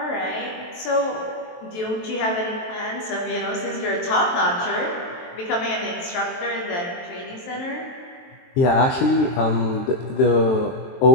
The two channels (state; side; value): late; right; 23 ms